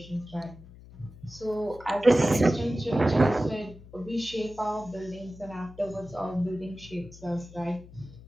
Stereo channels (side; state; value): left; noise; hum, 19 dB below the sound